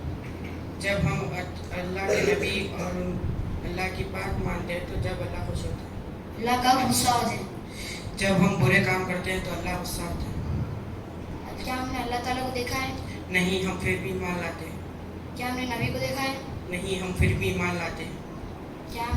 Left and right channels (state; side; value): identical; both; correlation 1.00